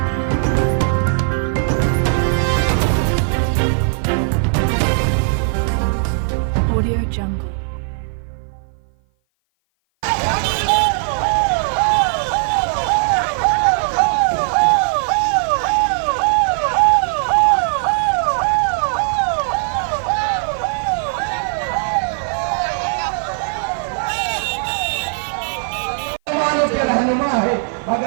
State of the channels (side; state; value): left; silent; 56 dB below the other